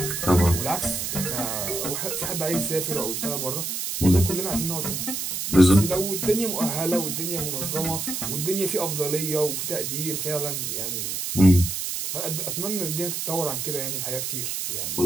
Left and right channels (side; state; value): right; noise; hiss, 3 dB below the sound